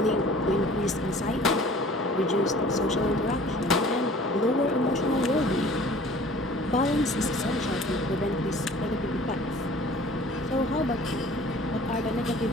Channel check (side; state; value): both; normal; correlation 0.48